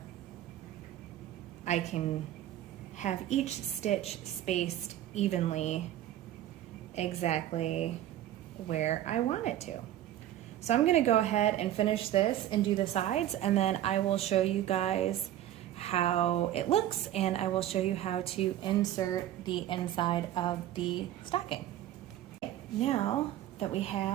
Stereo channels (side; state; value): left; quieter; 12.6 dB